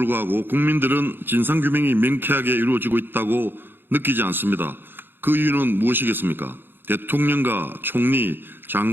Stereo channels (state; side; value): late; left; 0.10 ms